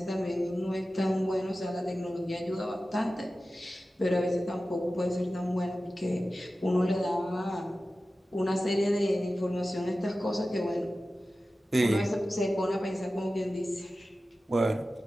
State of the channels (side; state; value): both; normal; correlation 0.95